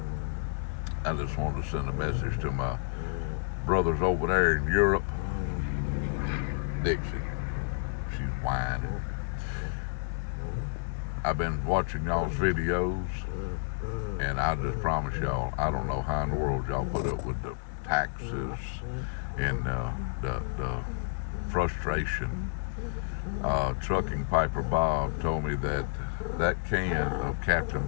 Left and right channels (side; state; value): right; quieter; 38.7 dB